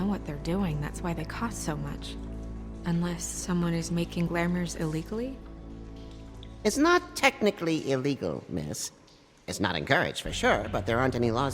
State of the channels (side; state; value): both; identical; correlation 1.00